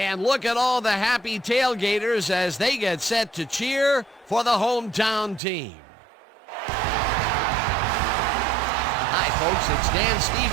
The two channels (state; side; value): drops out; left; at 5.4 s